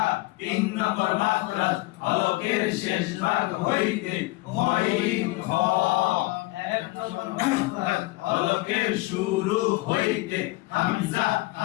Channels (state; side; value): quieter; right; 21.3 dB